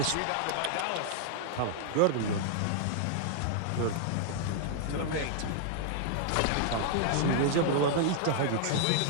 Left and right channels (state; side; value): different; both; correlation -0.01